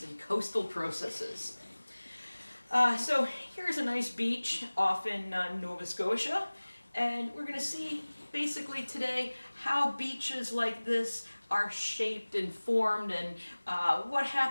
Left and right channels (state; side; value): inverted; both; correlation -1.00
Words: and coastal processes. So here's a nice beach off in Nova Scotia, and we're going to see basically today how beaches like this are shaped and formed and what